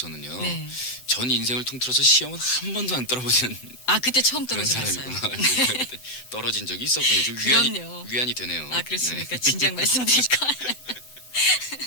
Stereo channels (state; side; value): late; right; 7.8 ms